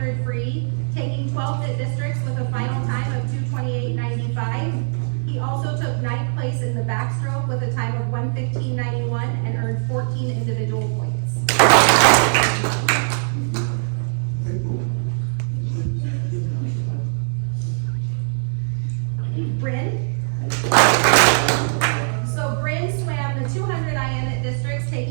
free, taking 12th at districts with a final time of 2:28:95. He also took 9th place in the backstroke with a time of 1:15:91 and earned 14 individual points. Bryn. So Bryn swam the 200 IM at districts,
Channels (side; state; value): left; silent; digital silence